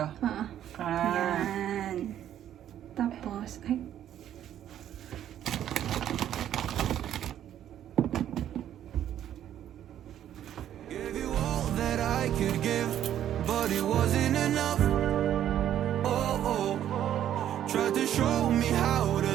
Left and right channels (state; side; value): quieter; left; 10.9 dB